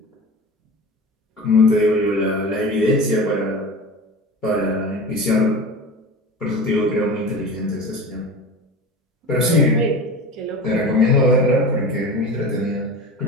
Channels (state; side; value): normal; both; correlation 0.32